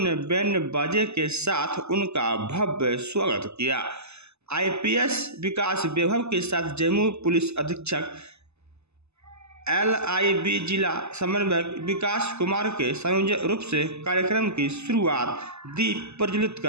बैंड बाजे के साथ उनका भव्य स्वागत किया। आईपीएस विकास वैभव के साथ जम्मू पुलिस अधीक्षक LIB जिला समन्वयक विकास कुमार के संयोजक रूप से कार्यक्रम की शुरुआत दीप प्रज्वलित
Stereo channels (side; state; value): left; late; 0.80 ms